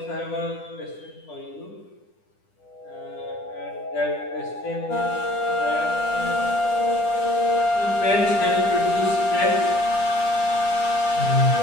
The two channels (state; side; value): late; right; 10 ms